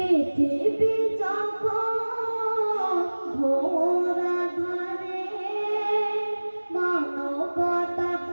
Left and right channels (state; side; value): inverted; both; correlation -1.00